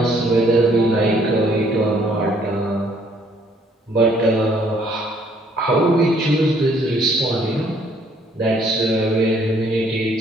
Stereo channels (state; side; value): normal; both; correlation 0.64